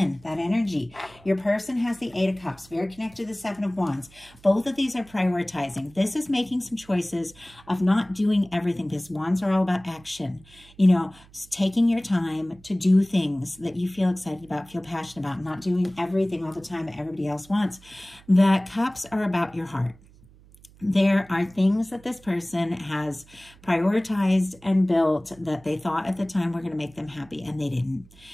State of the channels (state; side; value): noise; right; hum, 25 dB below the sound